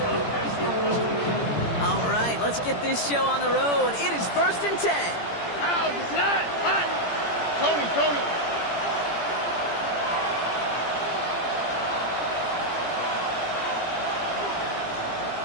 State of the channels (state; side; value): late; right; 17 ms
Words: All right, let's get this show on the road. It is 1st and 10. Ow, it's not. Hot. Tony.